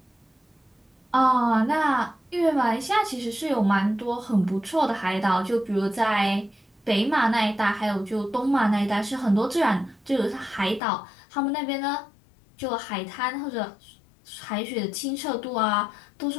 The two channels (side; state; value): right; drops out; at 10.8 s